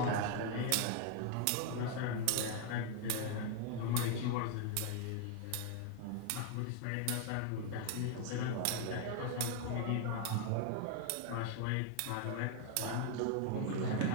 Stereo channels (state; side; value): different; both; correlation 0.00